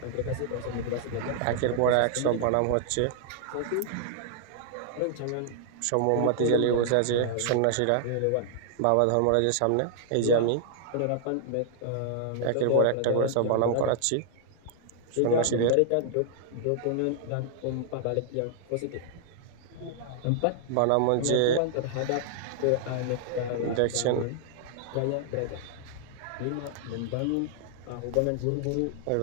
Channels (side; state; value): both; different; correlation 0.00